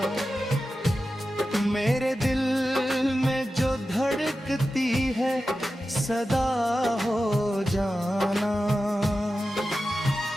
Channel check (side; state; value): both; normal; correlation 0.93